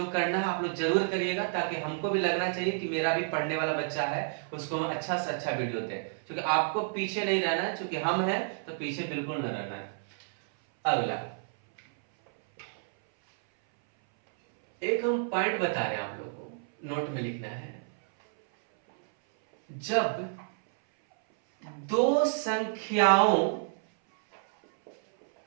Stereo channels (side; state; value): left; silent; 58 dB below the other